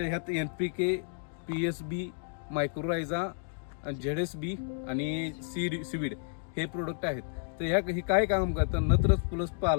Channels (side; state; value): right; silent; digital silence